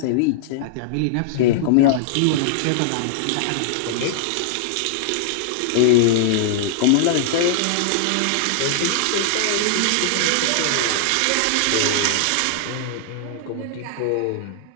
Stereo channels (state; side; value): different; both; correlation -0.01